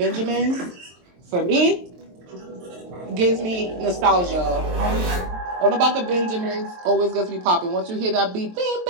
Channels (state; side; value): late; left; 23 ms